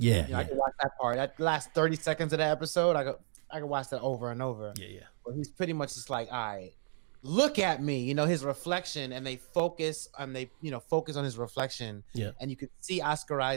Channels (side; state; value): left; silent; digital silence